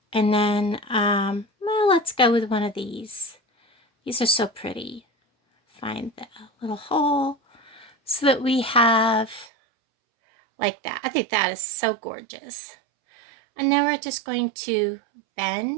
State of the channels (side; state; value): left; drops out; at 9.5 s